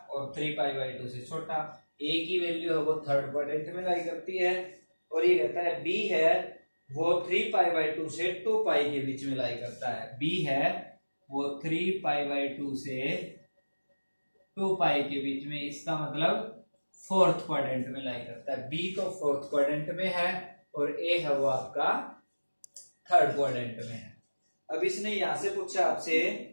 और 3π/2 से छोटा। A की वैल्यू है वो थर्ड क्वाड्रेंट में लाई करती है, और ये कहता है B है वो 3π/2 से 2π के बीच में लाई करता है, B है वो 3π/2 से 2π के बीच में, इसका मतलब फोर्थ क्वाड्रेंट में लाई करता है। B तो फोर्थ क्वाड्रेंट में है और A है वो आपका थर्ड क्वाड्रेंट में है। अब इसने यहां से पूछा आपसे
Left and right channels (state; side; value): inverted; both; correlation -1.00